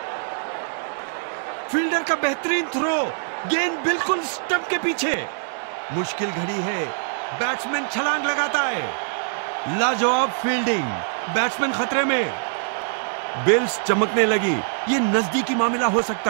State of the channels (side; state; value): left; silent; digital silence